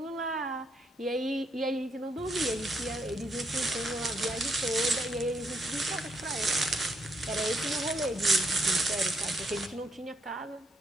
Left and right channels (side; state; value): both; normal; correlation 0.75